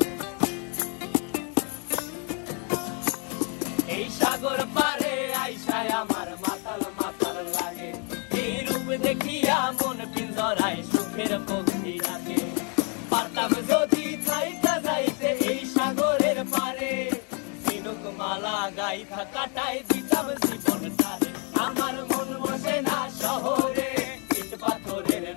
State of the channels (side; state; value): right; quieter; 37.8 dB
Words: এই সাগর পারে আইসায় আমার মাতাল মাতাল লাগে, এই রূপ দেখিয়া মন পিঞ্জরায় সুখের পক্ষী ডাকে। পারতাম যদি থাইকা যাইতে এই সাগরের পারে, ঝিনুক মালা গাইথা কাটাই দিতাম জীবনটারে। আমার মন বসে না শহরে, ইট পাথরের